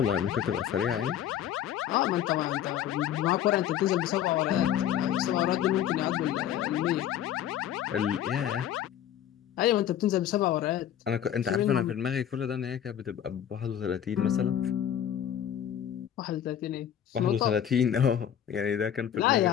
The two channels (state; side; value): quieter; right; 10.2 dB